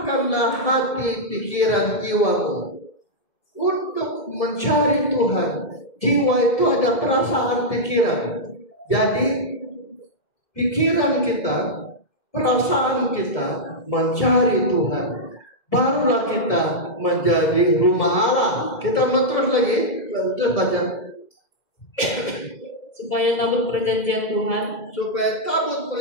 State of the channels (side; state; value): right; late; 2.1 ms